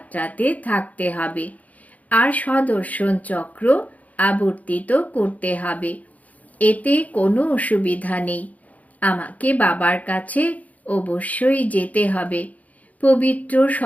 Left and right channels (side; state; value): right; late; 0.074 ms